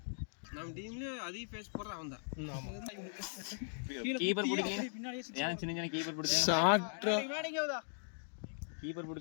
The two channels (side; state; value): right; silent; digital silence